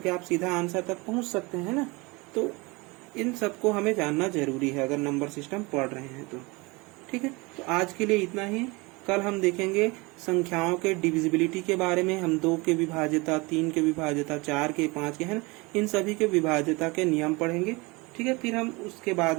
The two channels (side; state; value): left; quieter; 25.4 dB